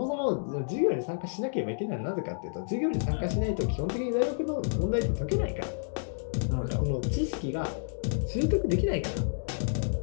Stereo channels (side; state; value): right; silent; digital silence